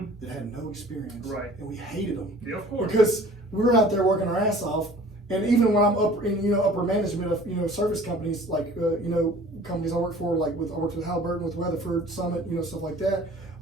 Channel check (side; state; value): both; normal; correlation 0.48